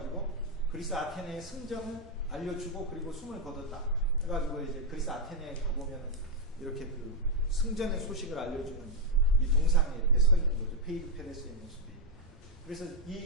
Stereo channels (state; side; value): normal; both; correlation -0.01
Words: 그리스 아테네의 승전을 알려주고 그리고 숨을 거뒀다. 해가지고 이제 그리스 아테네에 가보면 이렇게 그 승전의 소식을 알려주는 이 동상에 이렇게 서 있는 거죠. 페이디 페데스의 모습이. 그래서